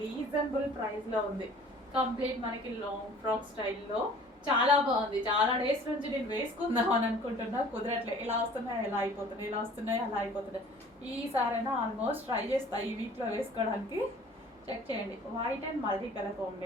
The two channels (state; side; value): normal; both; correlation 0.49